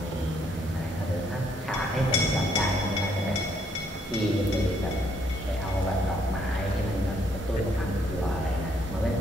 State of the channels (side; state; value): both; normal; correlation 0.69